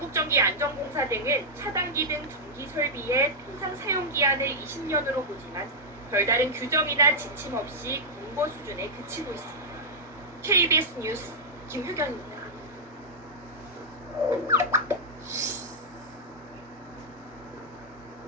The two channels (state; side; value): normal; both; correlation -0.07